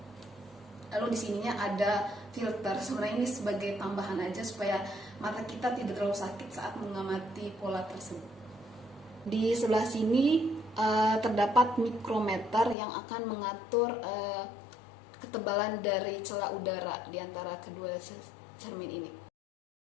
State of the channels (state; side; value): drops out; right; at 12.8 s